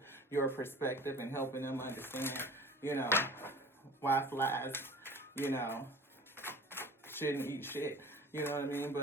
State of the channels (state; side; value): normal; both; correlation 0.42